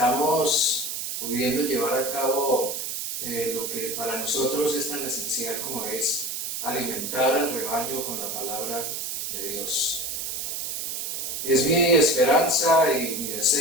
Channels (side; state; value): right; noise; hiss, 4 dB below the sound